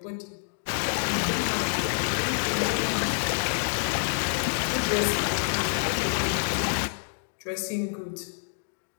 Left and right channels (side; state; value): right; silent; digital silence